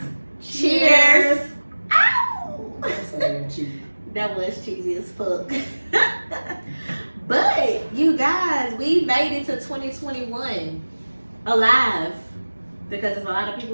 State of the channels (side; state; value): both; inverted; correlation -1.00